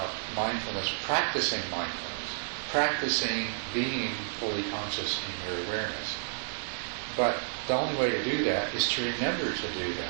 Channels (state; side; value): silent; left; digital silence